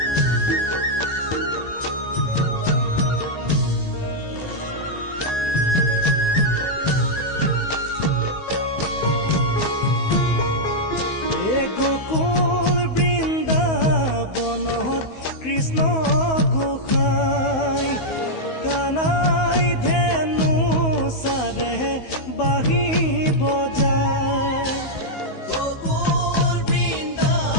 গোকুল বৃন্দাবনত কৃষ্ণ গোসাই কানাই ধেনু সাৰে বাহি বজায় গোকুল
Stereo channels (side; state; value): right; late; 16 ms